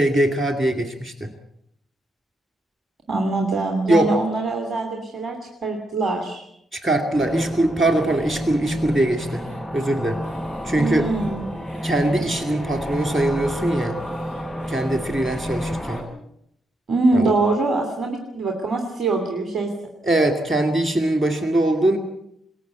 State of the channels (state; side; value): normal; both; correlation 0.81